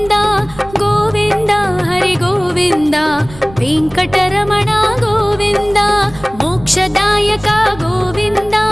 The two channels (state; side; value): noise; right; rumble, 19 dB below the sound